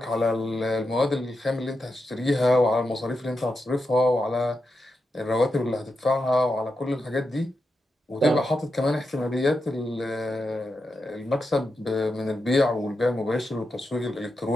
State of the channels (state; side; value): normal; both; correlation 0.87